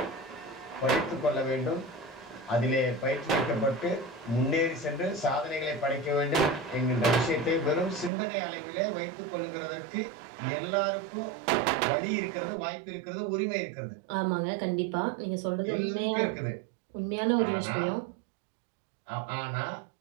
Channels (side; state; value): left; drops out; at 8.1 s